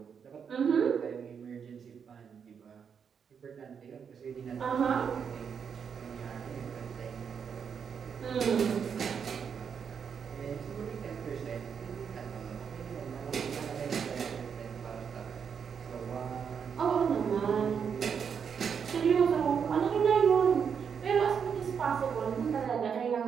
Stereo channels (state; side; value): quieter; left; 7.0 dB